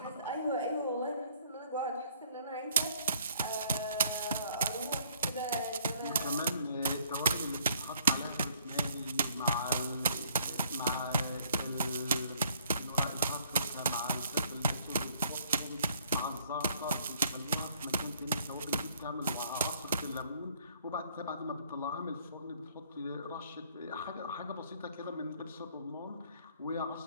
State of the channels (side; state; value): both; inverted; correlation -0.62